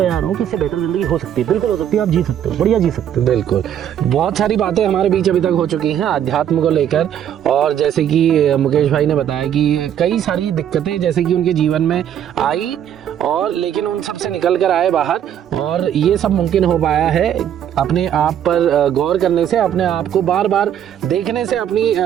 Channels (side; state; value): left; quieter; 9.9 dB